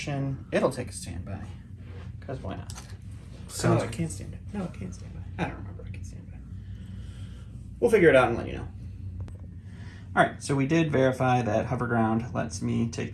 it'll take a standby. Because why not? No, it can't stand by. No, it can't stand by. I don't remember I can stand by. We'll figure it out and let you know. All right, so we did verify that hover ground lets me take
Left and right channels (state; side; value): identical; both; correlation 1.00